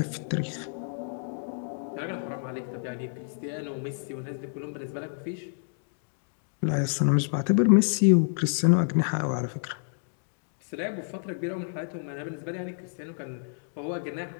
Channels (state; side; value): silent; right; digital silence